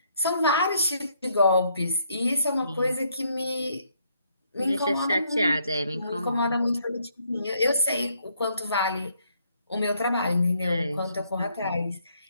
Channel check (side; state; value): both; inverted; correlation -0.71